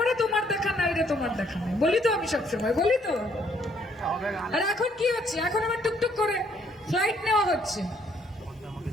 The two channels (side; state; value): both; normal; correlation 0.67